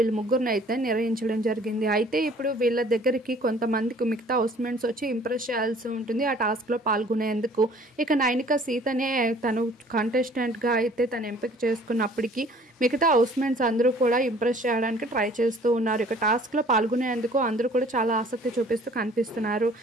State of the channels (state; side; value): normal; both; correlation 0.53